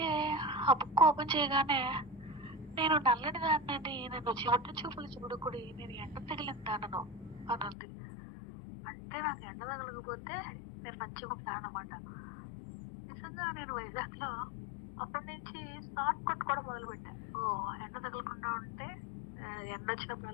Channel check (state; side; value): drops out; right; at 7.8 s